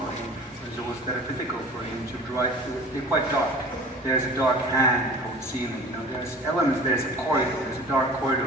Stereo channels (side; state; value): both; normal; correlation 0.41